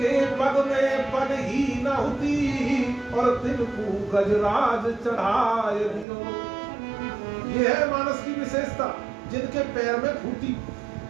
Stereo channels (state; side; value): drops out; left; at 6.1 s